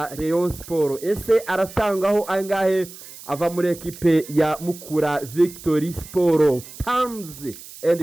Rayon Sport. Ese aratangaho angahe ava muri ekipe ya Mukura Victory Sport? Terms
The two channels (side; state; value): right; noise; hiss, 16 dB below the sound